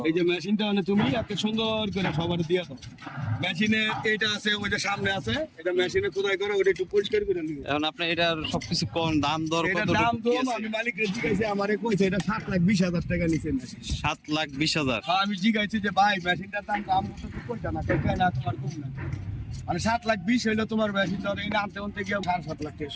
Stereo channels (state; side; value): identical; both; correlation 1.00